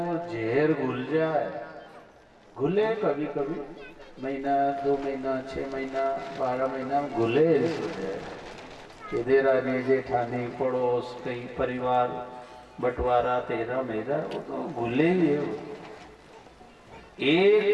जहर घुल जाए, घुले कभी कभी, महीना 2 महीना 6 महीना 12 महीना घुले कि देरानी जेठानी पड़ोस कई परिवार बंटवारा तेरा मेरा, वो तो घुले ही है।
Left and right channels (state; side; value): identical; both; correlation 1.00